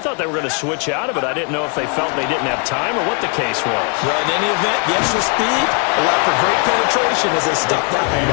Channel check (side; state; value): right; quieter; 37.2 dB